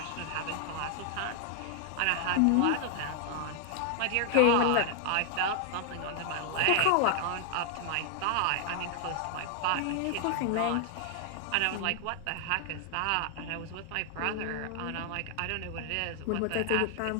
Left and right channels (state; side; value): different; both; correlation 0.00